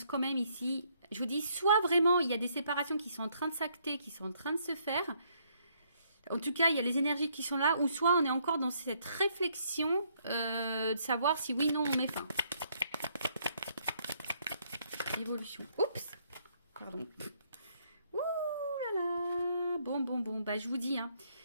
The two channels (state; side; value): inverted; both; correlation -0.70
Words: quand même ici, je vous dis, soit vraiment, il y a des séparations qui sont en train de s'acter, qui sont en train de se faire. En tout cas, il y a les énergies qui sont là, ou soit on est encore dans cette réflexion de savoir si oui, non, on met fin. Évolution. Oups. Pardon. Ouh là là. Bon. Bah, je vous dis.